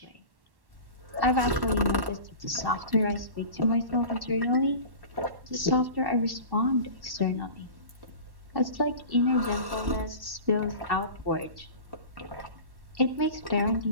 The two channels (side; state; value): left; late; 1.1 ms